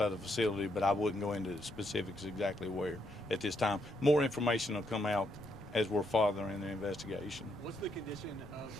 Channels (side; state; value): left; noise; rumble, 19 dB below the sound